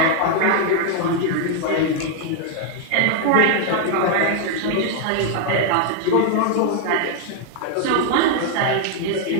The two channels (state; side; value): different; both; correlation 0.00